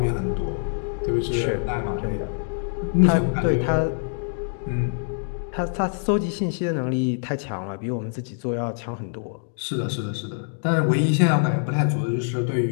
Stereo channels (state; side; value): silent; right; digital silence